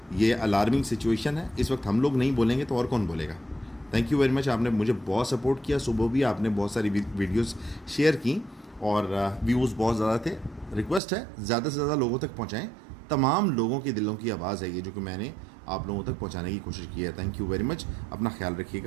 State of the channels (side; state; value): left; drops out; at 11.0 s